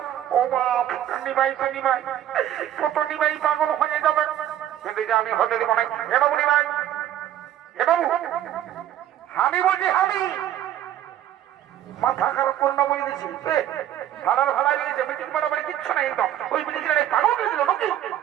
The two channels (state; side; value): quieter; left; 11.6 dB